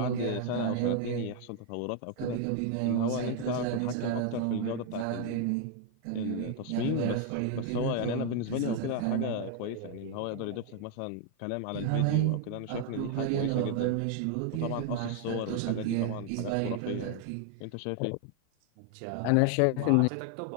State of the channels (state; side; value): different; both; correlation 0.00